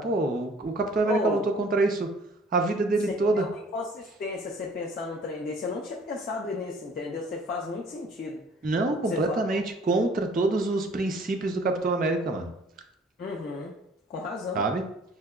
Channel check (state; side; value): normal; both; correlation 0.54